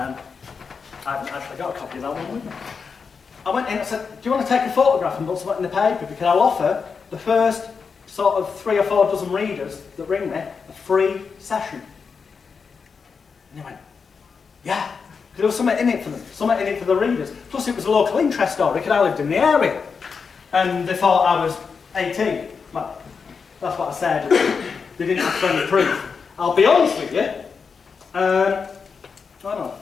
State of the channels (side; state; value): right; quieter; 5.5 dB